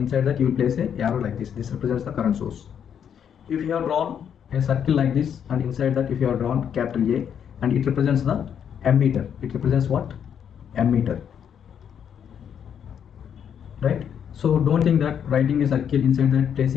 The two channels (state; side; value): quieter; right; 8.4 dB